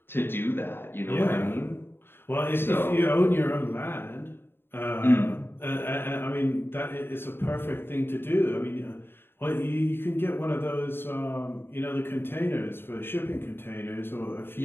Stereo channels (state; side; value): late; right; 0.11 ms